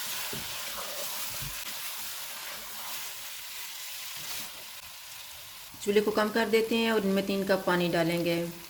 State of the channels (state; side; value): identical; both; correlation 1.00